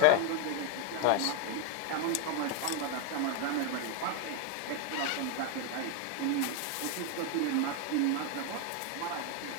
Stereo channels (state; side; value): different; both; correlation 0.01